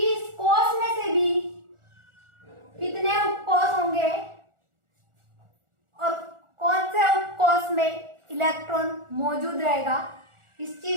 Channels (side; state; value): left; late; 1.4 ms